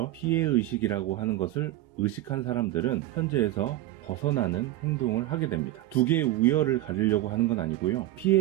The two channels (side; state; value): left; quieter; 15.4 dB